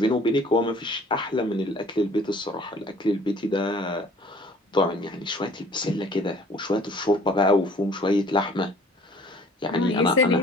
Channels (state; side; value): normal; both; correlation 0.53